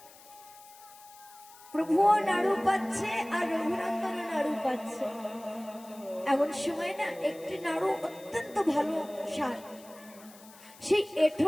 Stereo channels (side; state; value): left; noise; hiss, 22 dB below the sound